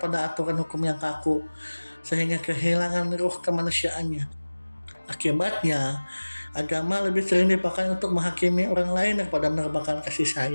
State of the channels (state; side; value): inverted; both; correlation -1.00